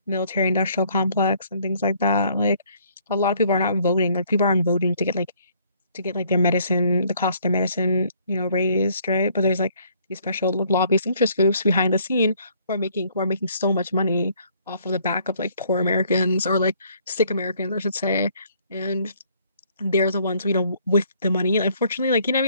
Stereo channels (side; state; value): both; inverted; correlation -0.63